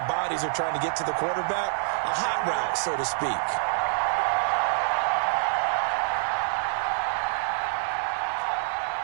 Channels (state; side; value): silent; left; 61 dB below the other